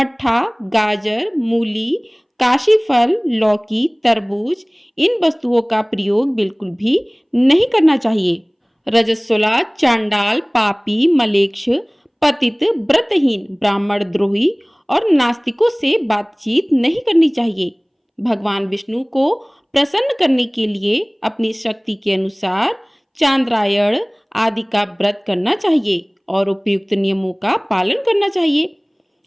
गाजर, मूली, काशी फल, लौकी, तरबूज, इन वस्तुओं का प्रयोग बिल्कुल भी नहीं करना चाहिए। रजस्वला, चांडाल, पापी, मलेच्छ, पतित, व्रतहीन, ब्राह्मण द्रोही और नास्तिकों से बातचीत नहीं करनी चाहिए। भगवान विष्णु को प्रसन्न करने के लिए अपनी शक्ति के अनुसार चांद्रायण आदि का व्रत करना चाहिए और उपयुक्त नियमों का पालन करना चाहिए।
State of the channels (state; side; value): identical; both; correlation 1.00